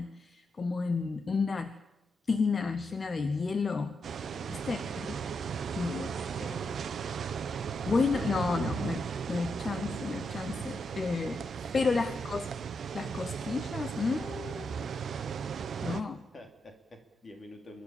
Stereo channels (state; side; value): normal; both; correlation 0.83